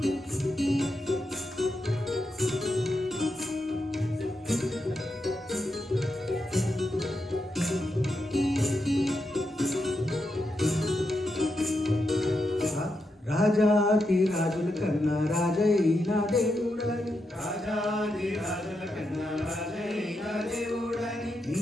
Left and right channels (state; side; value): normal; both; correlation 0.85